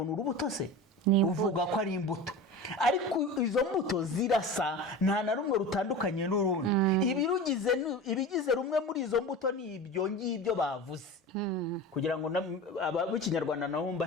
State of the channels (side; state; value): both; normal; correlation 0.31